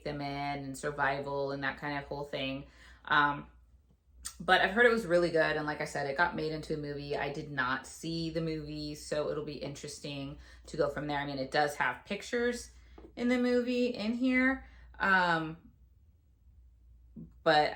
them in, and survival and that kind of whole thing. But I've heard it was really good. And like I said, it got made into a movie. I did not see the movie, so it'll be interesting to go from there. I mean, it does have pictures in the movie in here. But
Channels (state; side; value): identical; both; correlation 1.00